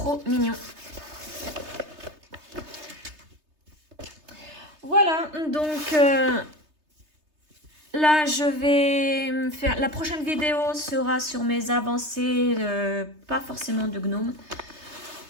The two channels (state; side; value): late; left; 3.3 ms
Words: mignon. Voilà. Donc là, je vais faire... La prochaine vidéo sera sur mes avancées. Pas forcément de gnome.